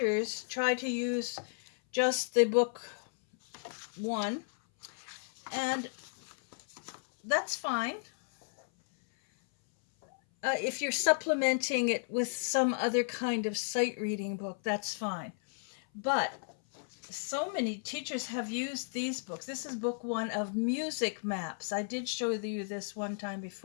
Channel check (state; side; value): silent; right; 55 dB below the other